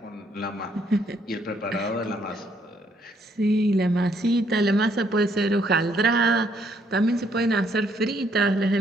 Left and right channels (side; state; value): both; normal; correlation 0.70